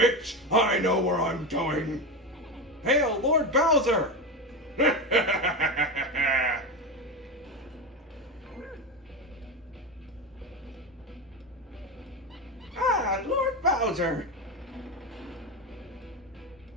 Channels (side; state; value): both; normal; correlation 0.19